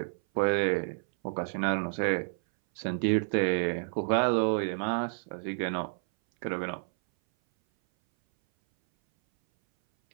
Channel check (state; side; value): silent; left; 58 dB below the other